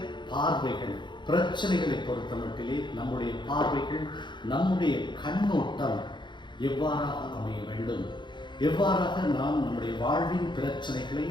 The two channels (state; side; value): late; right; 0.22 ms